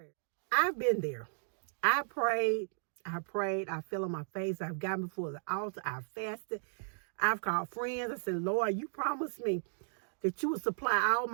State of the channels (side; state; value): left; silent; digital silence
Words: I've been there. I prayed, I fell on my face, I've gotten before the altar, I've fasted, I've called friends. I said, Lord, you promised me that you would supply all